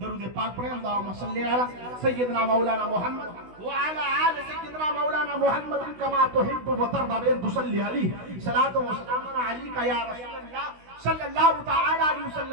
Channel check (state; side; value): late; left; 16 ms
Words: پاک پڑھیں. اللہم صلی علی سیدنا مولانا محمد وعلی آل سیدنا مولانا محمد کما تحب و ترضى بأن تصلی علیہ صلاۃ و سلام علیک یا رسول اللہ صلی اللہ تعالی علیہ